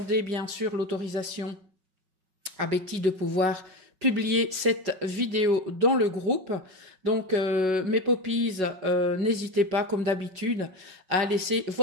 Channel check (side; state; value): left; late; 5.4 ms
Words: bien sûr l'autorisation à Betty de pouvoir publier cette vidéo dans le groupe. Donc, mes poppies, n'hésitez pas, comme d'habitude, à laisser